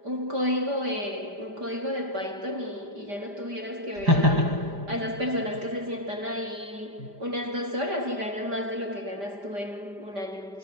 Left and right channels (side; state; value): left; late; 5.0 ms